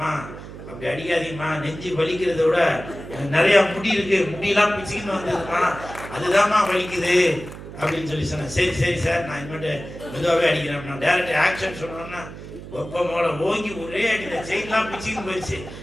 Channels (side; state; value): right; noise; hum, 13 dB below the sound